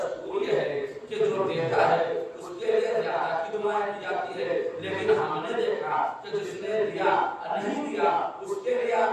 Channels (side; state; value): both; identical; correlation 1.00